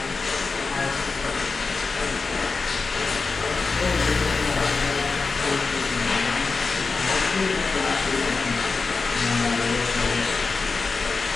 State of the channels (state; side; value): quieter; right; 4.3 dB